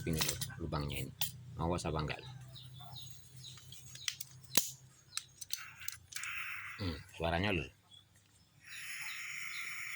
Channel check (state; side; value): identical; both; correlation 1.00